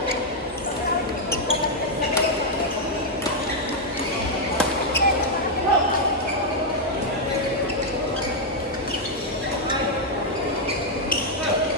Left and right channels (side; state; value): both; normal; correlation -0.02